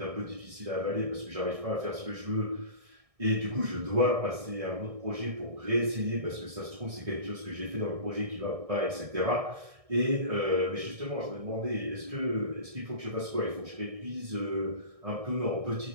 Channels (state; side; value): late; left; 1.6 ms